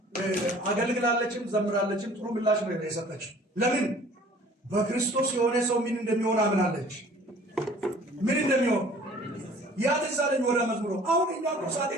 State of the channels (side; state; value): both; normal; correlation 0.51